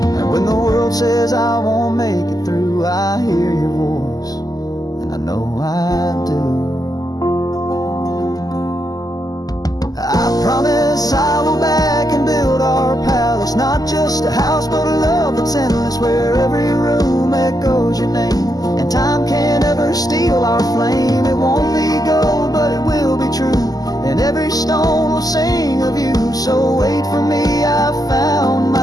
Says I won't make it through, I hear your voice, and I know I do. I promise I will back and build our palace, not just a house but a love that's endless, where every room echoes your name, and time can't ever steal our flame. It won't be gold, but it will be true, and every stone will sing of you. So wait for me, I've found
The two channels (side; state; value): right; late; 0.18 ms